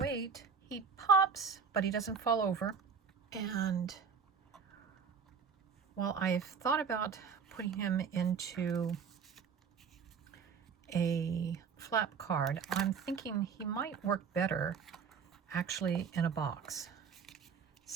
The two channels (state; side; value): quieter; left; 6.2 dB